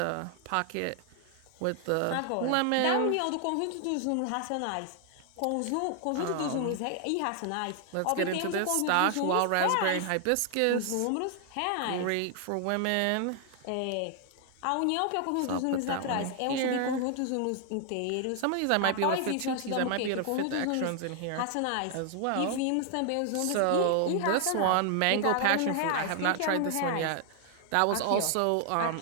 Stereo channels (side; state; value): both; different; correlation 0.00